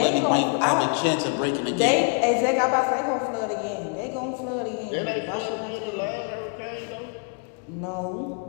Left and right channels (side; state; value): right; quieter; 38.0 dB